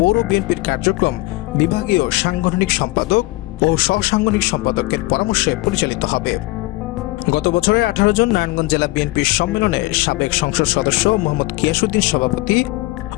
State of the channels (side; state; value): right; quieter; 21.0 dB